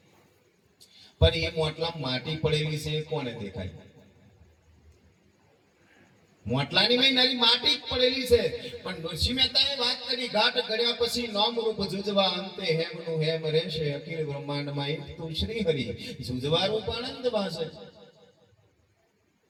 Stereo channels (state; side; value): identical; both; correlation 1.00